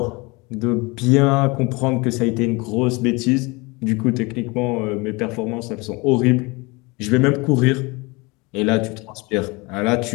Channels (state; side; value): quieter; right; 25.9 dB